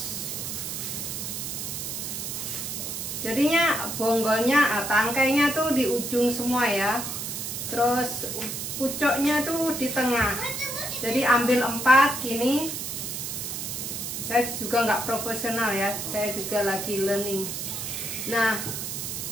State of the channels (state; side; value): noise; right; hiss, 5 dB below the sound